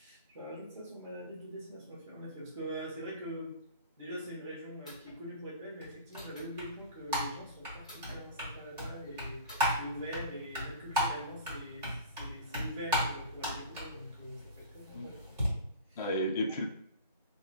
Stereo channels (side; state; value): both; inverted; correlation -0.36